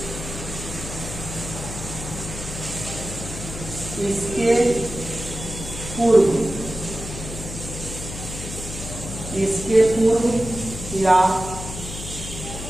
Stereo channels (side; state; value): left; noise; hum, 9 dB below the sound